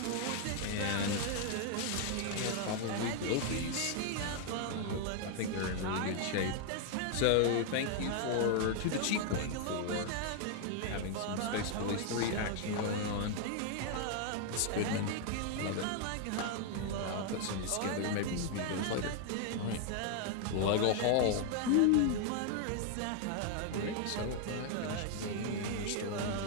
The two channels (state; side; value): different; both; correlation 0.00